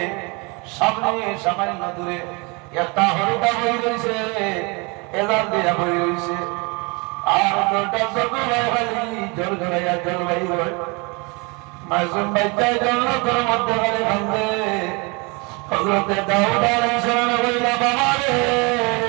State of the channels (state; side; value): quieter; left; 29.3 dB